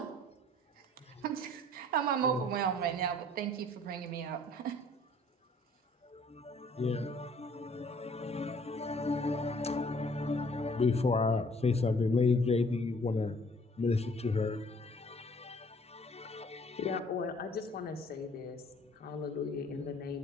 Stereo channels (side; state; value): both; normal; correlation 0.57